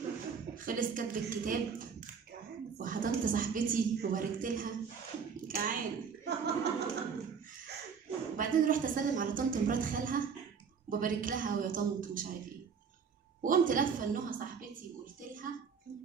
خلص كتب الكتاب وحضنت صاحبتي وباركت لها جعانه. وبعدين رحت اسلم على طنط مرات خالها وببارك لها ويا طنط ومش عارف ايه، وقمت لفه لنهى صاحبتي وقلت لها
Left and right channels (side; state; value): left; quieter; 6.2 dB